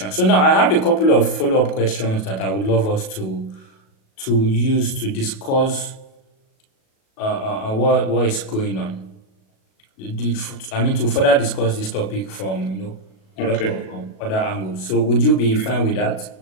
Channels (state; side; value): late; right; 37 ms